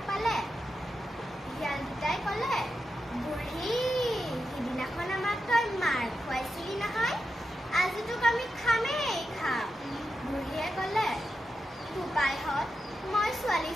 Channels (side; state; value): both; normal; correlation 0.88